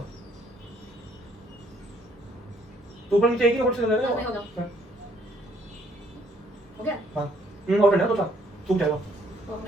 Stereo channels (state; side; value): normal; both; correlation 0.66